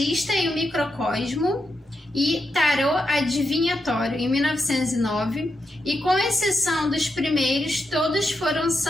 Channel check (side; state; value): both; normal; correlation 0.85